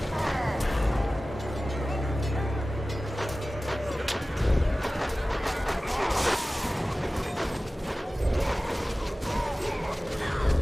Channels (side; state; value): both; normal; correlation 0.96